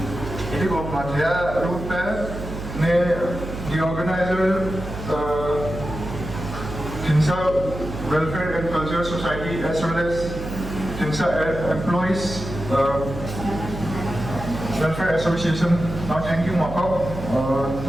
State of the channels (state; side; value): noise; right; hum, 9 dB below the sound